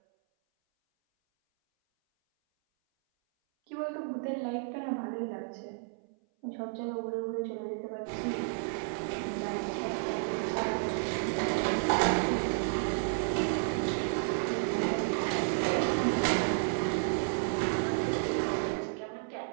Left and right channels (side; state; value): left; silent; 57 dB below the other